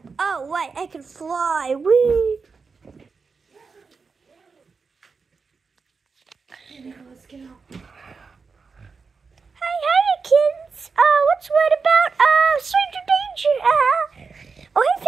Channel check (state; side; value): quieter; left; 4.9 dB